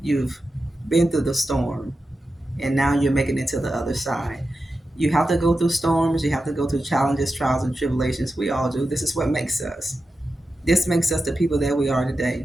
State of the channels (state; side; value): normal; both; correlation 0.91